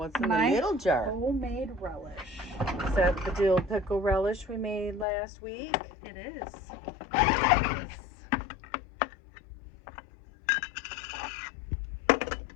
in the little jar? Homemade relish. Is that the dill pickle relish we made last week? It is. It is.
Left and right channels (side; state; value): right; drops out; at 5.1 s